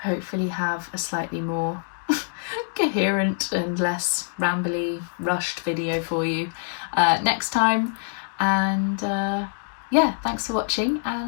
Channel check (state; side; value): silent; right; digital silence